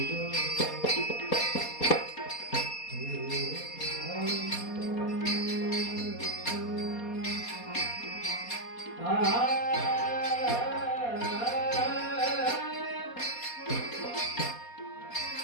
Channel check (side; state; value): right; late; 4.2 ms